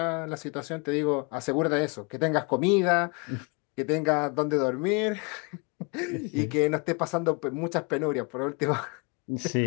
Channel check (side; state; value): right; quieter; 32.0 dB